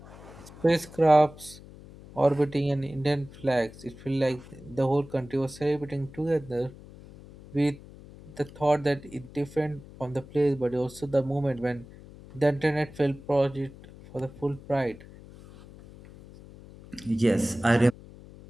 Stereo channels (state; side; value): noise; left; hum, 19 dB below the sound